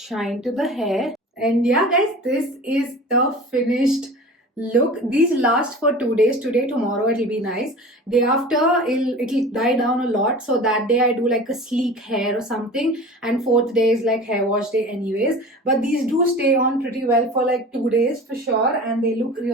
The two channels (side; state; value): both; normal; correlation 0.38